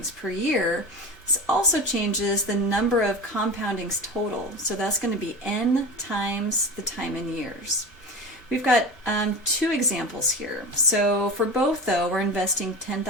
per year. This also changes the number of compoundings total. So that's going to be n times the time in years. We've got two examples here. So for both, though, we're investing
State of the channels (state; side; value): normal; both; correlation 0.29